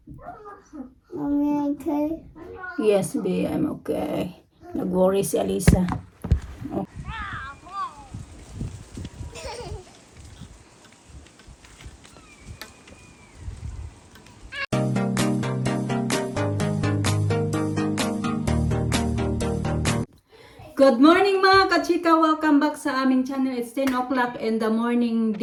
Mommy, okay? Yes, B, I'm okay. Nag-worry si Alisa. Good morning mga kachika! Welcome back sa aming channel. It's 10 o'clock in the morning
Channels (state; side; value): identical; both; correlation 1.00